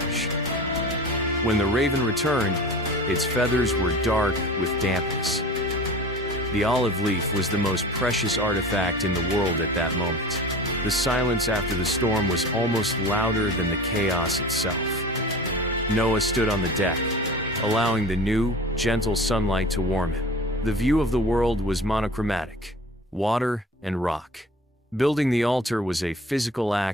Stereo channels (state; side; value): normal; both; correlation 0.38